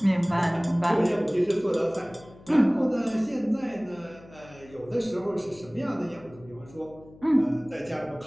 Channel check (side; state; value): left; noise; hum, 22 dB below the sound